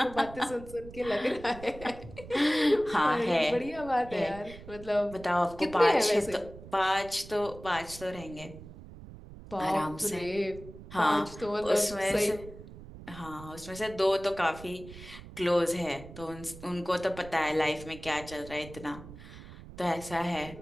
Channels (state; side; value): noise; right; rumble, 16 dB below the sound